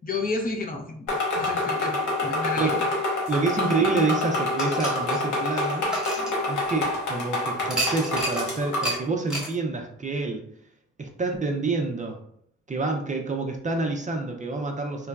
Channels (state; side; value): normal; both; correlation 0.31